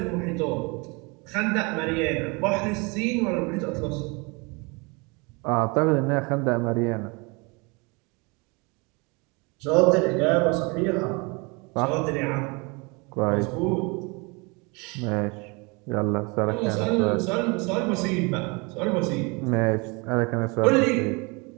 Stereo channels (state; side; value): quieter; left; 29.0 dB